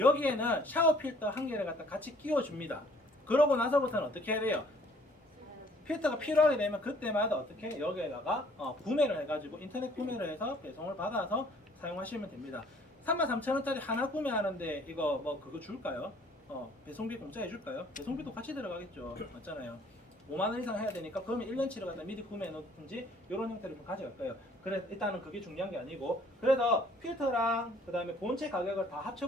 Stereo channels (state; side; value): normal; both; correlation 0.58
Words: 샤워 필터 한 개를 갖다 같이 끼워줍니다. 그러고 나서부터는 어떻게 해야 돼요? 필터가 필요하게 되면 그때마다 어떻게 여기에다가 구매를 해가지고 인터넷 구매를 해서 배송을 받아서 사용하시면 됩니다. 33,000원짜리 하나 구매하는데 이거 그거 줄까요? 배송비 공짜 해줄까요? 배송비도 같이 들어가겠죠. 맞잖아요. 5만 원 이상 해야 되니까 그러면 1년치를 갖다 미리 구매해 놓든지 이런 형태로 좀 가져갈 거예요. 그래 일단은 그게 중요한 게 아니고 그래서 필터랑 그다음에 본체 가격을 다 합쳐